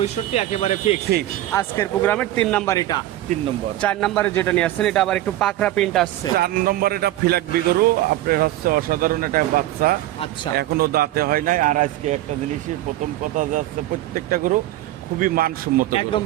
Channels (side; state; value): left; quieter; 14.7 dB